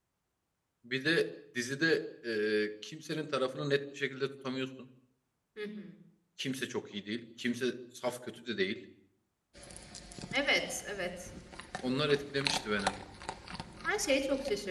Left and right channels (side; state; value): both; identical; correlation 1.00